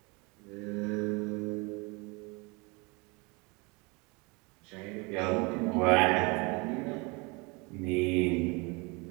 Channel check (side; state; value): left; quieter; 28.2 dB